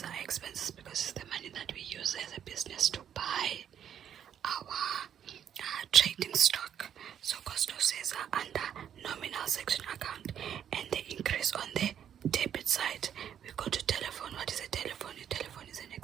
are expenses because it's the money that we use as a business to buy our trading stock. So cost of sales are under nominal section account, and the increase on the debit side. We go to telephone. What is a telephone? A telephone is an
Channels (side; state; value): left; quieter; 9.2 dB